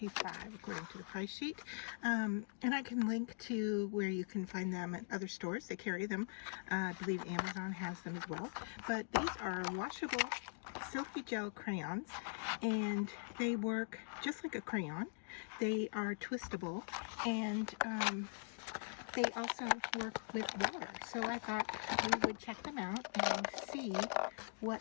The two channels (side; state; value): right; silent; digital silence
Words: according to the price sheet, and I can link to where you can find them at other stores. They carry them. I believe Amazon has them as well. But these are washable silky gel crayons, and they work just like a crayon. They are twistable, and they also work with water. So I thought we would check them out and see